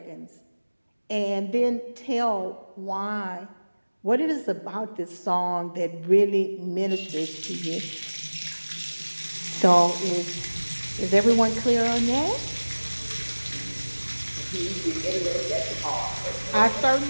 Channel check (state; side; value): inverted; both; correlation -1.00